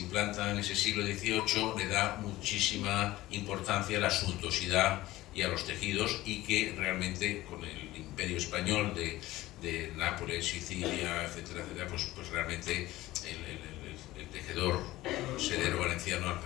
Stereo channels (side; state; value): right; quieter; 17.1 dB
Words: en ese siglo XVIII, le da muchísima importancia a la suntuosidad y a los tejidos, y que realmente con el imperio español de Nápoles, Sicilia, etcétera, etcétera, pues realmente el tejedor sedero valenciano